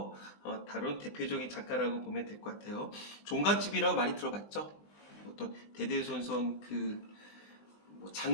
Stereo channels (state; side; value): late; right; 20 ms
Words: 다룬 대표적인 작가라고 보면 될 것 같아요. 종갓집이라고 많이 들어봤죠? 어떤 대대손손